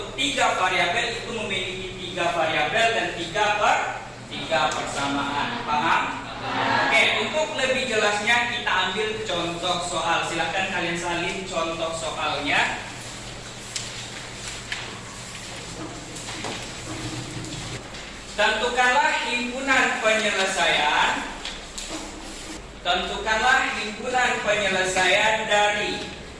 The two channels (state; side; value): identical; both; correlation 1.00